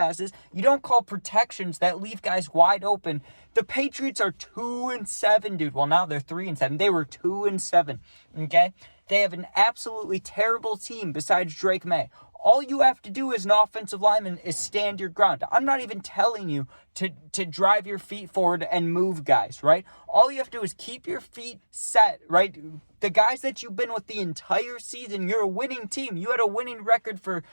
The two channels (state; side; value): inverted; both; correlation -1.00